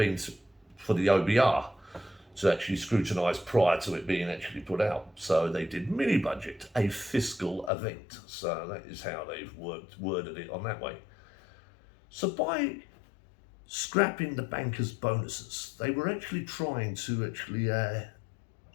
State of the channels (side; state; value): right; drops out; at 7.7 s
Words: for the OBR to actually scrutinise prior to it being actually put out. So they did mini budget, a fiscal event. So that is how they've worded it on that way. So by scrapping the bankers' bonuses, they were actually trying to